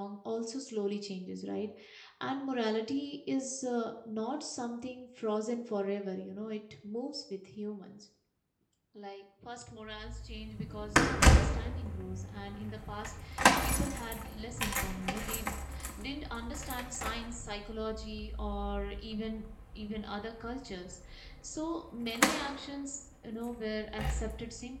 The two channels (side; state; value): both; identical; correlation 1.00